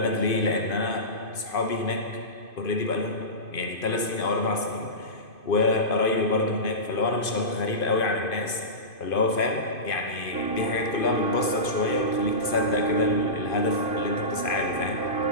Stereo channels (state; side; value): late; right; 2.5 ms